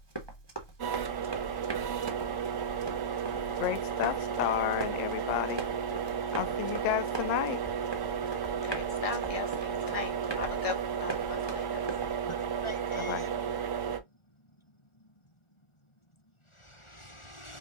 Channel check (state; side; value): late; right; 1.1 ms